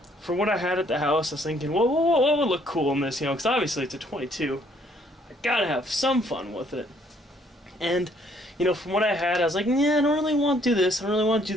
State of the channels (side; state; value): both; normal; correlation 0.65